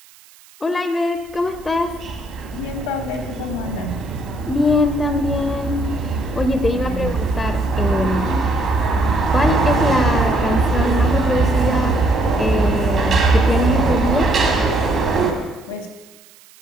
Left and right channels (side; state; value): right; noise; hiss, 26 dB below the sound